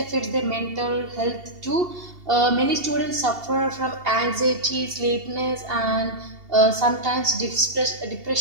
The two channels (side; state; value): left; late; 2.7 ms